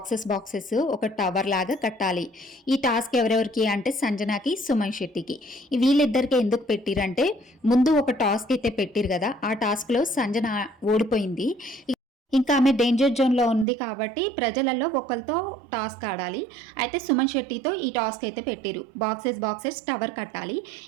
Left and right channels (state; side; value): drops out; left; at 13.7 s